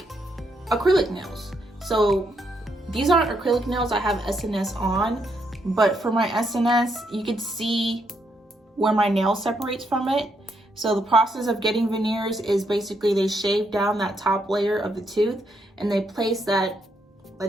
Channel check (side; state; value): both; normal; correlation 0.77